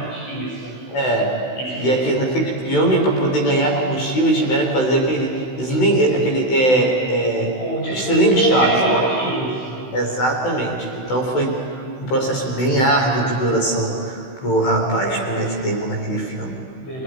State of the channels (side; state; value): right; late; 16 ms